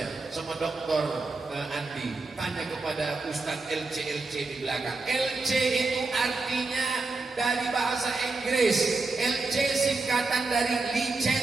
sama Dokter Andi, tanya kepada Ustadz LC di belakang. LC itu artinya dari bahasa Inggris. LC singkatan dari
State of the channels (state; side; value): quieter; left; 3.7 dB